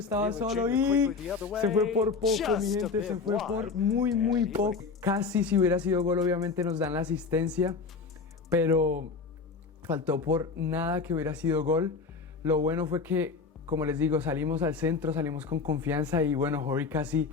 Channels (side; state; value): right; quieter; 4.7 dB